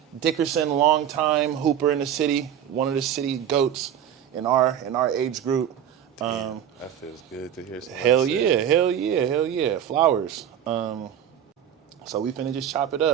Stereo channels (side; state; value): left; quieter; 9.7 dB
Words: Dickerson, longtime hooper in the city, one of the city goats in our age group. That feels good to hear. Hell yeah. Flowers. So we finna just chop it